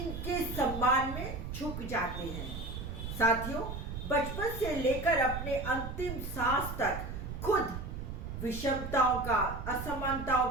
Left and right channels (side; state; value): right; noise; rumble, 7 dB below the sound